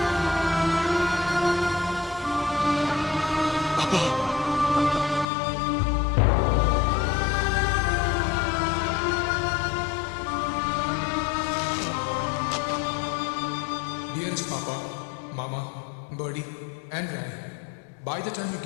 Dearest Papa, Mama, Birdie, and Rai, by the time you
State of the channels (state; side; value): drops out; right; at 5.2 s